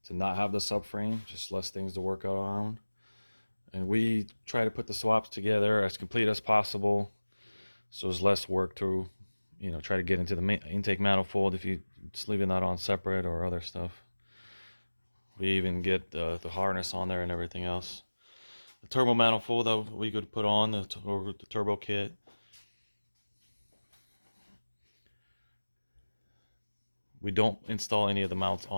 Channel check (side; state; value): both; inverted; correlation -1.00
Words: to not have the subframe, just less things to work around. And we try to put the swaps together as complete as possible, so there's less work to, try to get into the intake manifold if you just leaving that on separate or other stuff. We even get the harness on there and everything else. The turbo manifold that we could put on the turbo kit. We don't install any of the mounts